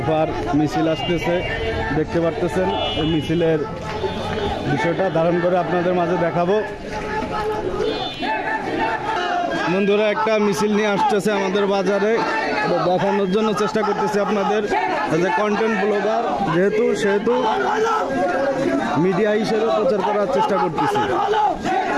মিছিল আসতেছে, দেখতে পারতেছেন। এই মিছিলের বিষয়টা ধারণ করে আপনাদের মাঝে দেখাবো। বন্ধুরা একটা মিছিল নিয়ে আসতেছে আমাদের বাজারে, দেখানোর জন্য চেষ্টা করতেছি আপনাদের। যে কন্টেন্ট ব্লগার সেহেতু মিডিয়া হিসেবে প্রচার করার চেষ্টা করতেছি।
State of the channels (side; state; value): both; identical; correlation 1.00